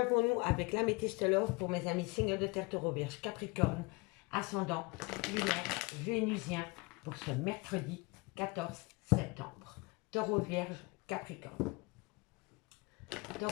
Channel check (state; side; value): quieter; right; 26.6 dB